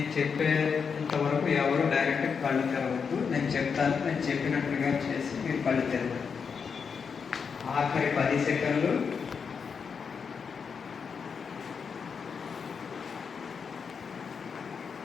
చెప్పేంతవరకు ఎవరు డైరెక్ట్ కళ్ళు తెరవద్దు. నేను చెప్తాను, నేను చెప్పినట్లుగా చేసి మీరు కళ్ళు తెరవండి. ఆఖరి 10 సెకండ్లు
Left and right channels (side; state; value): right; quieter; 6.1 dB